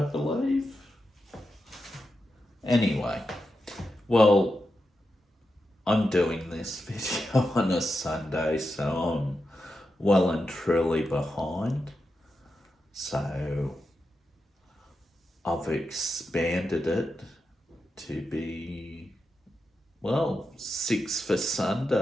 believe. Anyway, well, I'm doing this video on a Sunday, so I'm well and truly behind. So I've expanded it to be, well, 6 for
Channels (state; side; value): normal; both; correlation 0.88